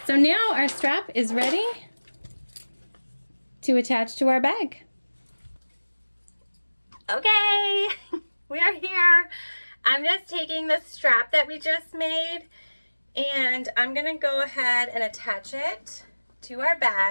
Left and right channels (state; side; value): inverted; both; correlation -1.00